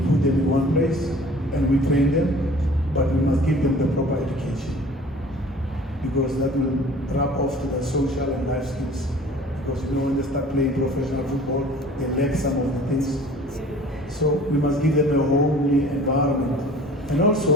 put them in one place and we train them, but we must give them the proper education, because that will rub off to the social and life skills. Because you know, when they start playing professional football, they lack some of the things. So we must give them a homely environment. And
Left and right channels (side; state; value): both; normal; correlation 0.47